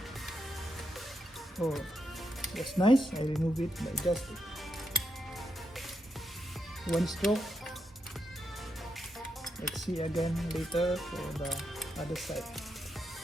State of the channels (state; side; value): normal; both; correlation 0.83